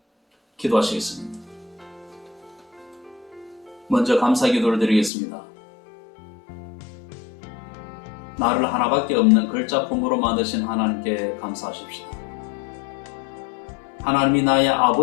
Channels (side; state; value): right; drops out; at 5.1 s